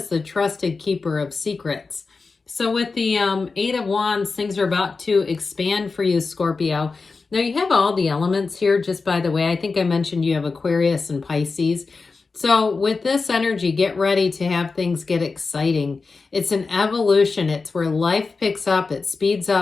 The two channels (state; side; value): quieter; right; 4.3 dB